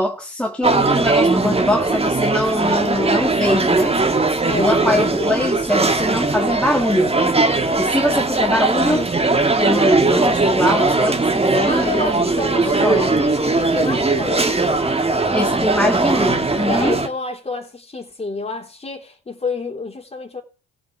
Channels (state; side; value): normal; both; correlation 0.52